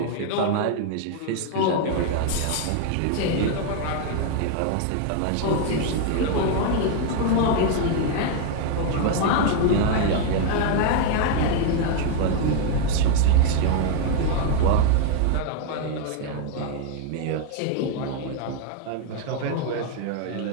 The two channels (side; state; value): both; different; correlation 0.01